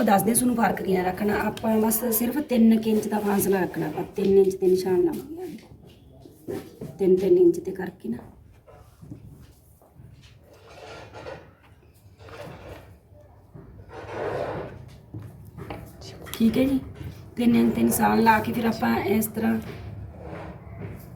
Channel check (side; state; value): both; identical; correlation 1.00